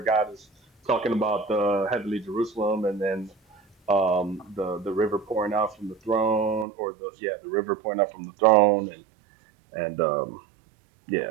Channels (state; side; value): drops out; left; at 6.7 s